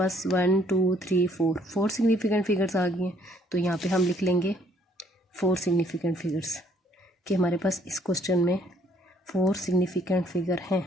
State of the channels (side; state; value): both; normal; correlation 0.65